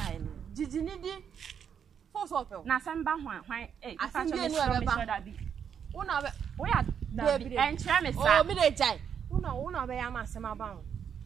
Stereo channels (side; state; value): left; quieter; 7.9 dB